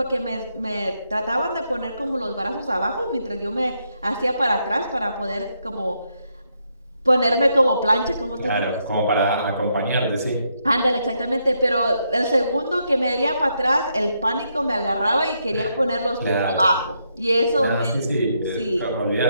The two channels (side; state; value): both; inverted; correlation -0.78